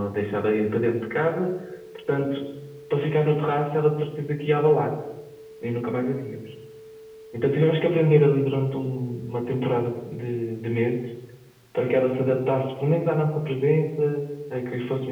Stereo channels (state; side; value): identical; both; correlation 1.00